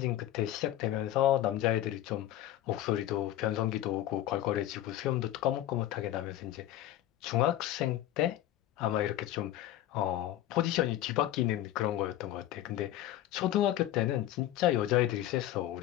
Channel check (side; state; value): right; quieter; 13.3 dB